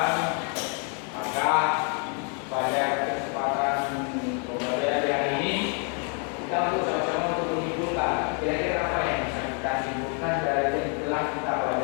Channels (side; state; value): right; quieter; 39.7 dB